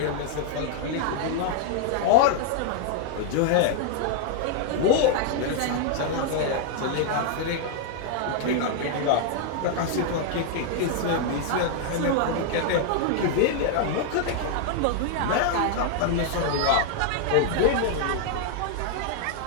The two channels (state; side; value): different; both; correlation 0.00